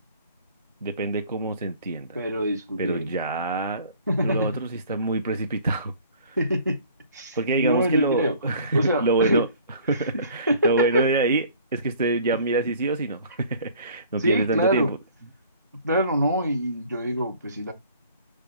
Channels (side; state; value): both; inverted; correlation -0.52